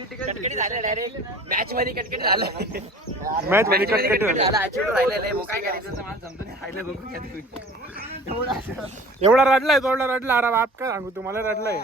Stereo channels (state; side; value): normal; both; correlation 0.44